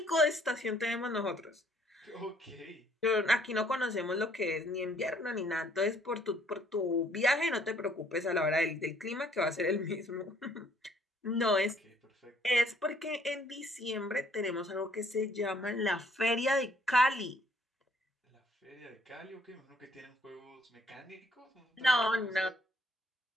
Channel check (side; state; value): both; normal; correlation 0.63